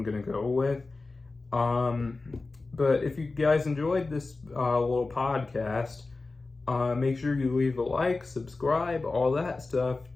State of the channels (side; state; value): right; quieter; 3.6 dB